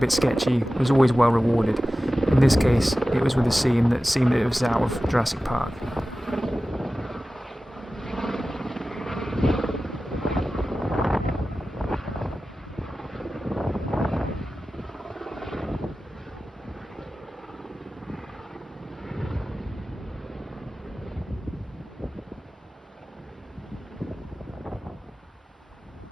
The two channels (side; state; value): both; normal; correlation 0.95